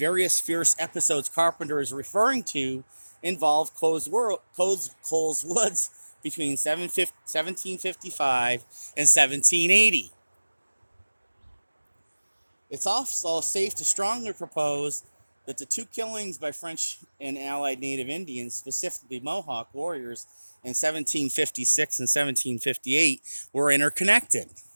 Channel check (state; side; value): inverted; both; correlation -1.00